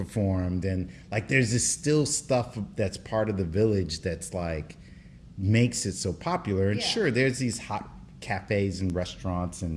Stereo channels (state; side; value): identical; both; correlation 1.00